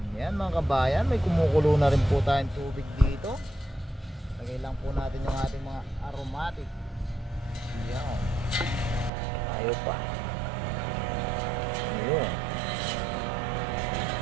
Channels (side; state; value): left; drops out; at 9.1 s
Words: Yan mga kabayan, may kumukulo na rin po tayong tubig dito. Lagay lang po natin yung ating mga aromatic. Yan, ayaw pa. Ayun.